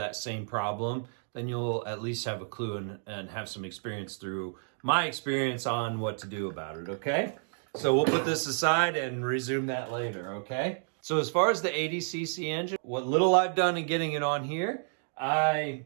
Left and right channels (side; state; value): left; silent; digital silence